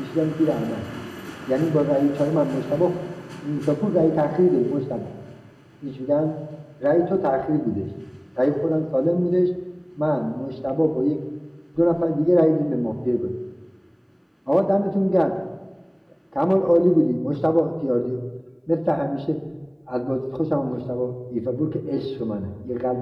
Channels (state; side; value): identical; both; correlation 1.00